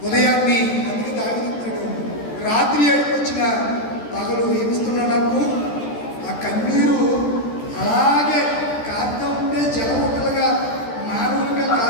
ఉదయాన్ని అందుకే దాగిస్తాడు. రాత్రి ఏడుకొచ్చిన పగలు ఏమిస్తున్నా నాకు ఆ కన్నీరు అలాగే కారుతూ ఉంటే జలముట్టలుగా మానవులుగా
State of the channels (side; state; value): right; late; 14 ms